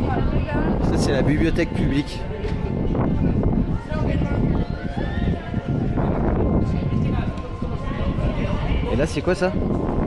Ça c'est la bibliothèque publique. Et là c'est quoi ça?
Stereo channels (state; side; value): identical; both; correlation 1.00